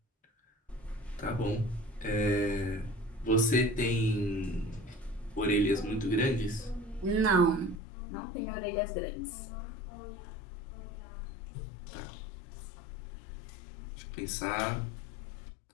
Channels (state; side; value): drops out; right; at 7.8 s